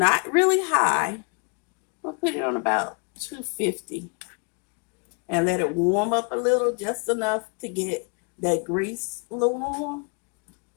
really high. I'll put it on about 250 and let it warm up a little, just enough to get that grease a little warm.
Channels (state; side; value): quieter; right; 36.1 dB